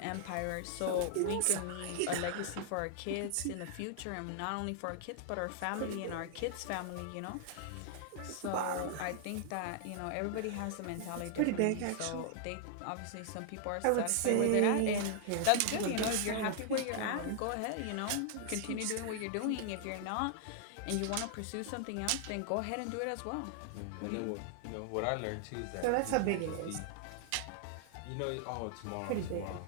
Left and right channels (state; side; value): different; both; correlation 0.00